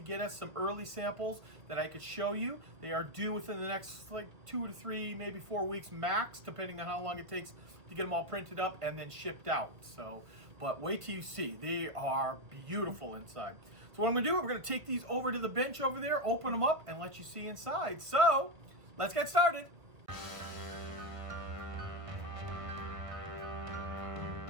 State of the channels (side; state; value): left; late; 1.5 ms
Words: get us some early samples that I could show you. They are due within the next like 2 to 3, maybe 4 weeks max, depending on how long it takes to get them all printed up and then shipped out. So, but wait till you see. They are beautiful inside. So what I'm gonna do, we're gonna take these over to the bench over there, open them up, and let you see inside. So, let's get started.